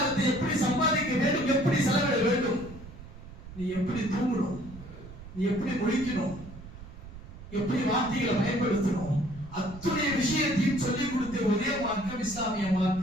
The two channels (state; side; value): noise; right; rumble, 15 dB below the sound